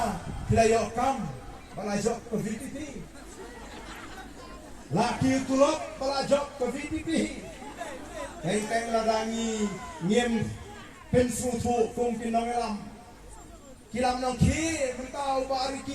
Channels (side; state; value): both; identical; correlation 1.00